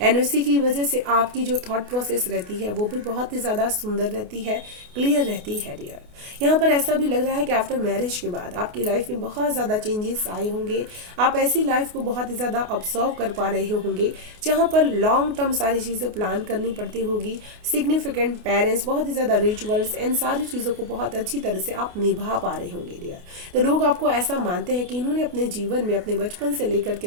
उसी की वजह से आपकी जो थॉट प्रोसेस रहती है वो भी बहुत ही ज़्यादा सुंदर रहती है, क्लियर रहती है डियर। यहाँ पर ऐसा भी लग रहा है कि आफ्टर मैरिज के बाद आपकी लाइफ में बहुत ज़्यादा चेंजेस आए होंगे। आप ऐसी लाइफ को बहुत ही ज़्यादा ऑब्जर्व कर पा रहे होंगे जहाँ पर लॉन्ग टर्म सारी चीज़ें प्लान करनी पड़ती होगी, सिग्निफिकेंट पेरेंट्स, बहुत ही ज़्यादा रिचुअल्स एंड सारी चीज़ों को बहुत अच्छी तरह से आप निभा पा रहे होंगे डियर। तो लोग आपको ऐसा मानते हैं कि इन्होंने अपने जीवन में अपने बचपन से लेकर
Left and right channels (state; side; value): late; left; 28 ms